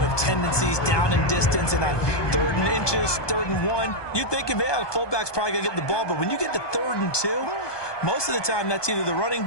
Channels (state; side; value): late; right; 1.2 ms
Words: of tendencies, down and distance, and on 3rd and inches, 3rd and 1, you think, yeah, the fullback's probably going to get the ball, but when you get to 3rd and 2, most of the time that's either the running